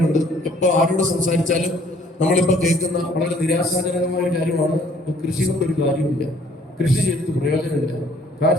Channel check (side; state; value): both; normal; correlation 0.60